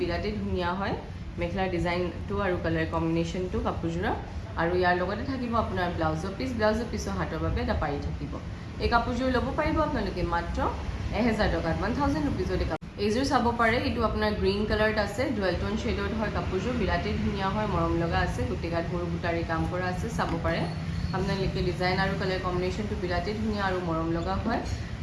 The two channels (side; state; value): both; identical; correlation 1.00